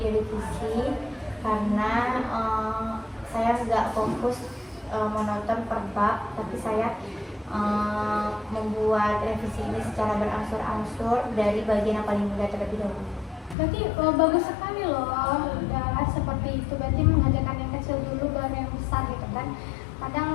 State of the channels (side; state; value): right; drops out; at 13.6 s